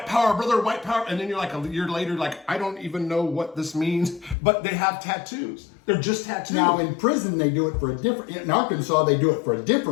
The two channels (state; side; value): drops out; right; at 4.4 s